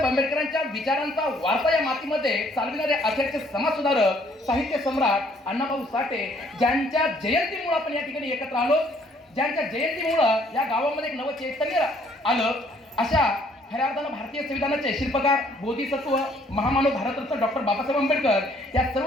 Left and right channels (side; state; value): both; normal; correlation 0.63